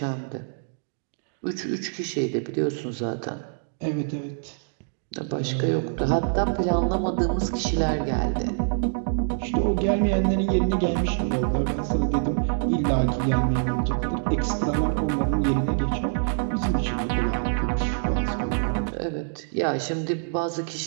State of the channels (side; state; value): left; silent; digital silence